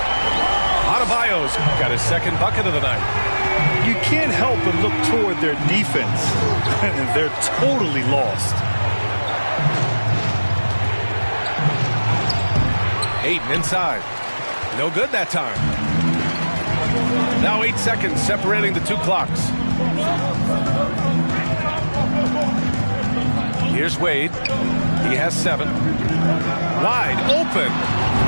Adebayo's got his second bucket of the night. You can't help but look toward their defense. And they're totally lost. Ayton inside. No good that time. Now 8 seconds separating the two clocks. Here's Wade. He has 7. Wide open.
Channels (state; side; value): inverted; both; correlation -1.00